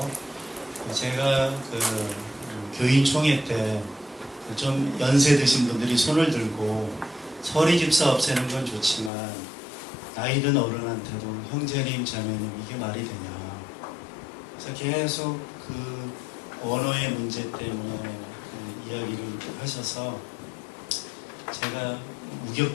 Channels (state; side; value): drops out; right; at 9.1 s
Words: 제가 교인총회 때 좀 연세 드신 분들이 손을 들고 서리 집사 없애는 건 좋지만 나이 든 어른한테도 형제님 자매님 이게 말이 되냐. 그래서 계속 그 언어의 문제 때문에 이야기를 하셔서 제가